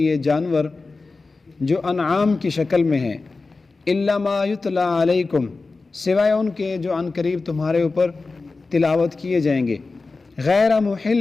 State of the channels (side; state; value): right; quieter; 3.8 dB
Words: جانور جو انعام کی شکل میں ہیں، الا ما یتلی علیکم، سوائے ان کے جو عنقریب تمہارے اوپر تلاوت کیے جائیں گے، غیر